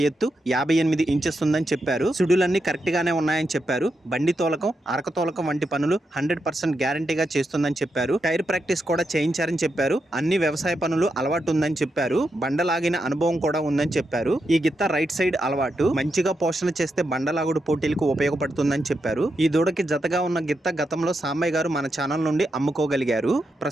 ఎత్తు 58 ఇంచెస్ ఉందని చెప్పారు। సుడులన్నీ కరెక్ట్గానే ఉన్నాయని చెప్పారు। బండి తోలకం, అరక తోలకం వంటి పనులు 100% గ్యారంటీగా చేస్తుందని చెప్పారు। టైర్ ప్రాక్టీస్ కూడా చేయించారని చెప్పారు। అన్ని వ్యవసాయ పనులు అలవాటు ఉందని చెప్పారు। బండలాగిన అనుభవం కూడా ఉందని చెప్పారు। ఈ గిత్త రైట్ సైడ్ అలవాటు, మంచిగా పోషణ చేస్తే బండలాగుడు పోటీలకు ఉపయోగపడుతుందని చెప్పారు। ఈ దూడకి జతగా ఉన్న గిత్త గతంలో సాంబయ్య గారు మన ఛానల్ నుండి అమ్ముకోగలిగారు।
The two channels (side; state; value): both; normal; correlation 0.85